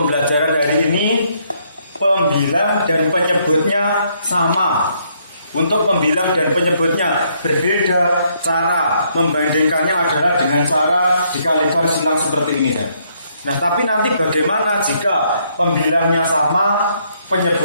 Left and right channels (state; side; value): inverted; both; correlation -0.71